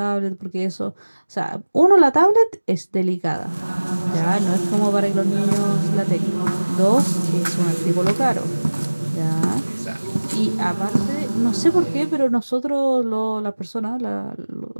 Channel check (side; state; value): both; inverted; correlation -1.00